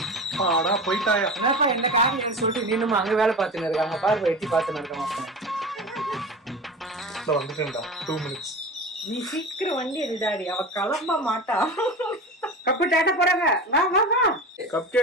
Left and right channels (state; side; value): normal; both; correlation 0.30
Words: பாடா போயிட்டாயா? என்னப்பா என்ன காரியம் சொல்லிட்டு நீனும் அங்க வேலை பார்த்துன்னு இருக்காங்க பாரு. எட்டி பார்த்துன்னு இருக்க மாட்டேன். வந்துட்டேன்டா. 2 minutes. நீ சீக்கிரம் வண்டி எடுடாடி, அவ கிளம்ப மாட்டா. கப்பு டேட்ட போறாங்க. வா. கப்